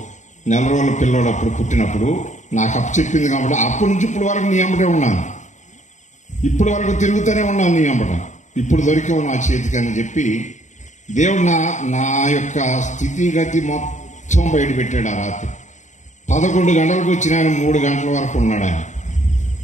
4 రోజుల పిల్లోడు అప్పుడు పుట్టినప్పుడు నాకు అప్పచెప్పింది కాబట్టి అప్పటి నుంచి ఇప్పుడు వరకు నీ అమ్మటే ఉన్నాను, ఇప్పటి వరకు తిరుగుతూనే ఉన్నాను నీ అమ్మట. ఇప్పుడు దొరికావు నా చేతికి అని చెప్పి దేవుడు నా యొక్క స్థితిగతి మొత్తం బయట పెట్టాడు. ఆ రాత్రి 11 గంటలకు వచ్చిన ఆయన 3 గంటల వరకు ఉన్నాడు. ఆయన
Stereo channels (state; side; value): late; right; 0.35 ms